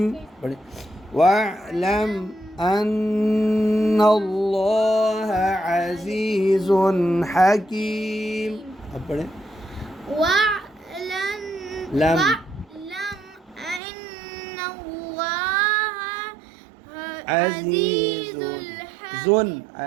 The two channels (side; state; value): left; drops out; at 13.8 s